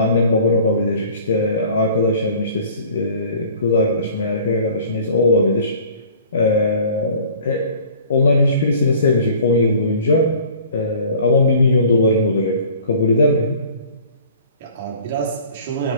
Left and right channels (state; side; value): inverted; both; correlation -0.49